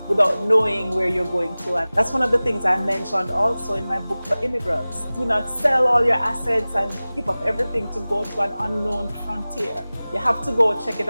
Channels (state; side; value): inverted; both; correlation -0.98